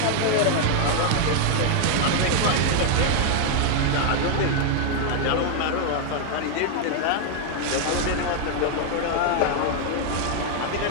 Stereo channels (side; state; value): both; different; correlation 0.00